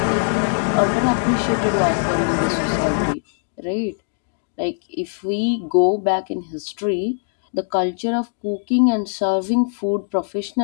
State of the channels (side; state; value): right; silent; 63 dB below the other